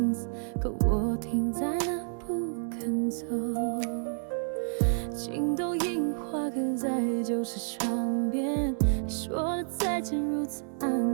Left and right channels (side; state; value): left; silent; digital silence